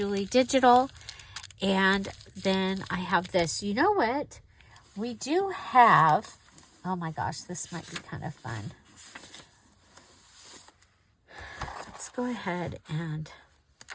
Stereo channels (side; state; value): both; identical; correlation 1.00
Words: Digital. And then I have this. You know what? We do have, oh my gosh, this might be kind of fun. Let's go ahead and